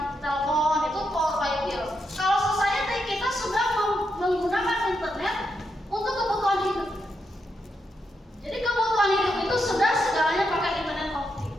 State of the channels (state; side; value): normal; both; correlation 0.82